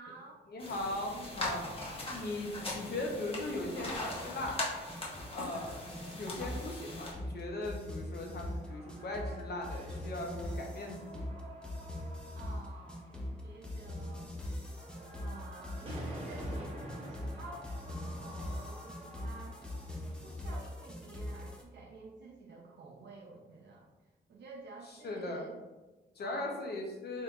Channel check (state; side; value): normal; both; correlation 0.44